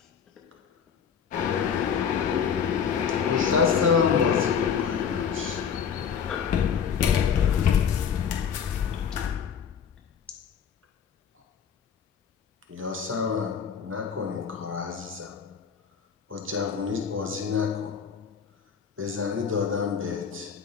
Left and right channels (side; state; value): right; quieter; 7.2 dB